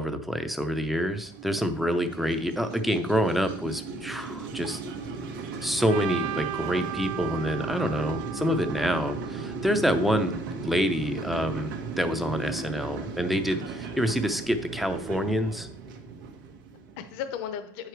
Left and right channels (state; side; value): normal; both; correlation 0.68